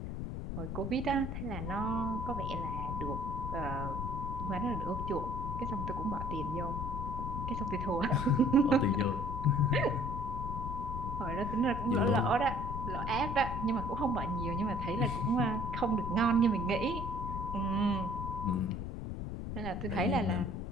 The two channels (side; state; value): left; noise; rumble, 4 dB below the sound